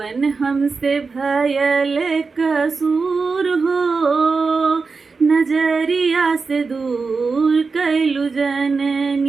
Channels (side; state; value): left; quieter; 4.5 dB